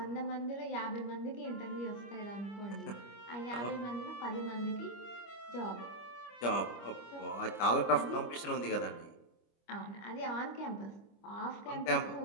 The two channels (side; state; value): right; late; 25 ms